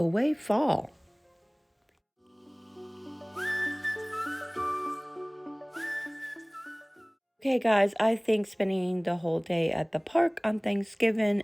fall. Okay guys, I think spending the whole day at the park on Thanksgiving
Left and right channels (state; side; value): identical; both; correlation 1.00